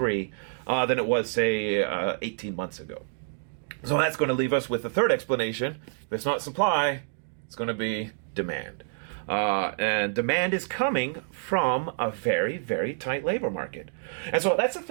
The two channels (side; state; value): left; silent; digital silence